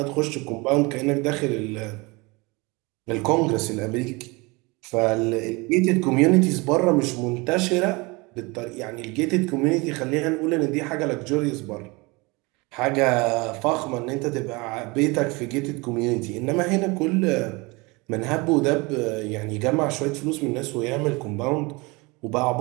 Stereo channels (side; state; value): left; quieter; 25.9 dB